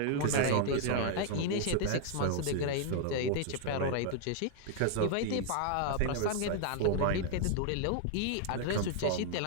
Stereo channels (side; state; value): both; different; correlation 0.00